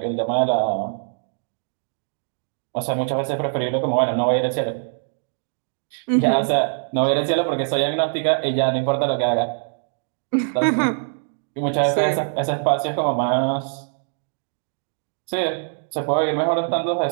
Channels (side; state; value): left; silent; digital silence